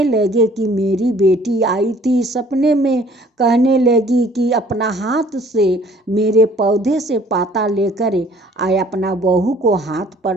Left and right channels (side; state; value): both; normal; correlation 0.55